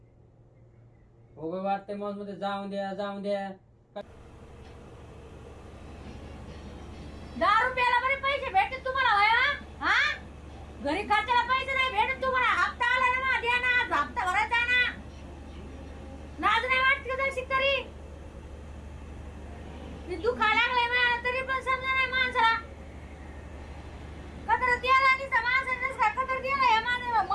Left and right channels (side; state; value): both; identical; correlation 1.00